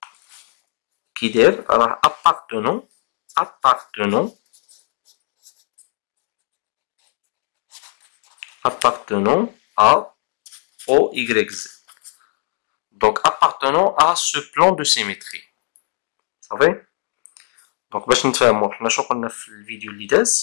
qui داير راه appartenant à OYZ. Donc appartenant à ce plan de symétrie. Vous savez? Donc باش نتفاهموا حنا شنو قلنا في الفيديو اللي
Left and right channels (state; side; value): silent; right; digital silence